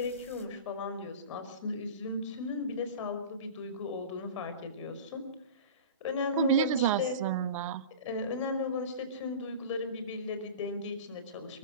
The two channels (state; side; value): inverted; both; correlation -0.33